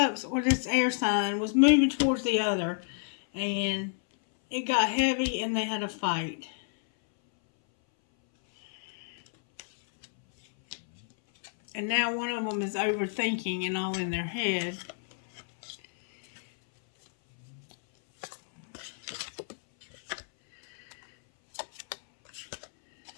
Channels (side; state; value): right; silent; 58 dB below the other